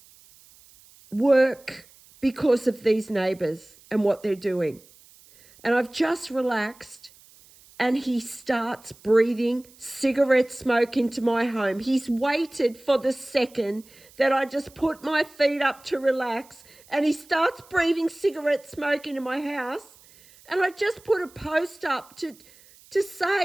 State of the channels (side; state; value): right; noise; hiss, 26 dB below the sound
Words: work because of these neighbours and what they're doing. And I've just relaxed and he starts breathing cigarette smoke into my home. He's waited for the second that I just put my feet up to relax and he starts breathing cigarette smoke into my house. And I just put a post up to